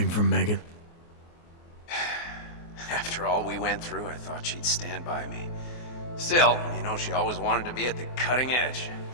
from Megan? After all we went through, I thought she'd stand by me. Still, you know, she always wanted to be at the cutting edge.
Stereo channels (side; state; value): right; late; 24 ms